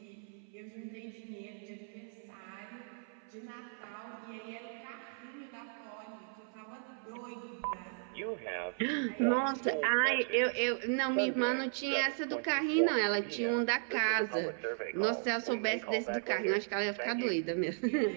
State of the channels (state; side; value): silent; left; 54 dB below the other